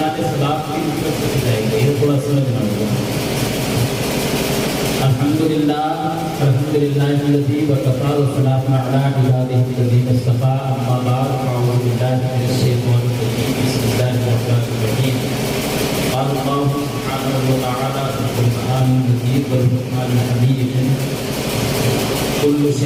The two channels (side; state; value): both; identical; correlation 1.00